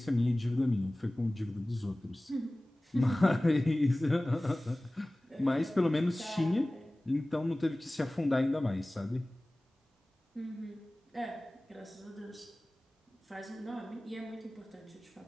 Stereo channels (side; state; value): both; normal; correlation 0.98